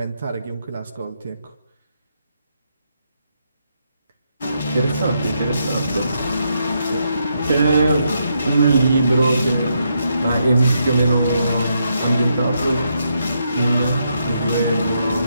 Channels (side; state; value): both; inverted; correlation -0.79